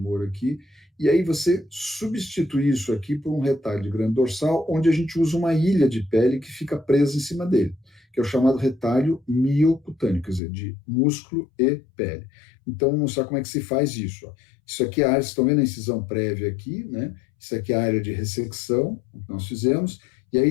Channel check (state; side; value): drops out; right; at 10.4 s